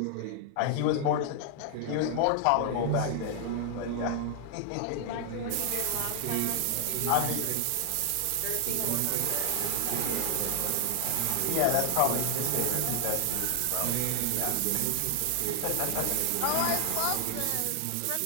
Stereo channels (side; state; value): both; different; correlation 0.00